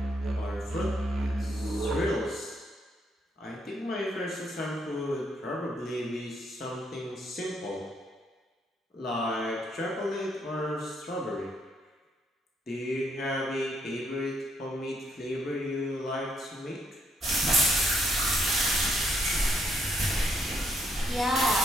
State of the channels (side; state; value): both; normal; correlation 0.72